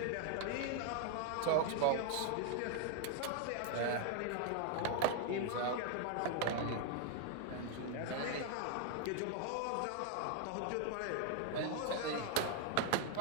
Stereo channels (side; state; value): both; different; correlation 0.00